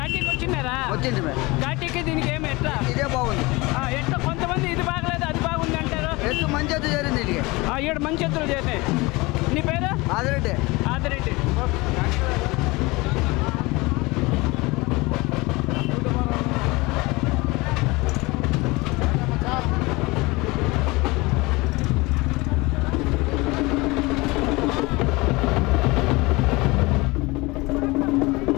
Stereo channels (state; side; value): quieter; right; 23.4 dB